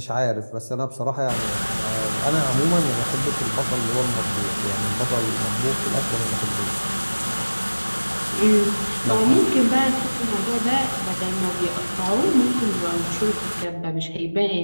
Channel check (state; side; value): inverted; both; correlation -1.00